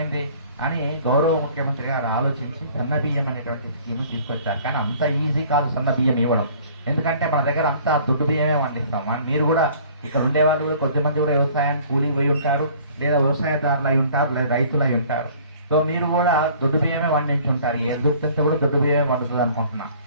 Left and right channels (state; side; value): inverted; both; correlation -0.52